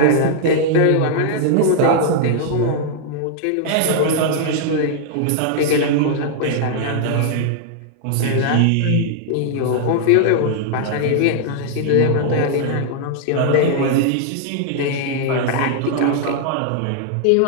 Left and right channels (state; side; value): different; both; correlation -0.01